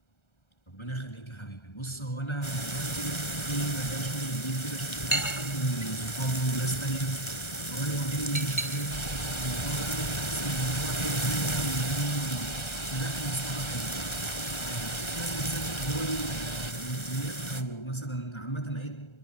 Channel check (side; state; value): right; late; 1.3 ms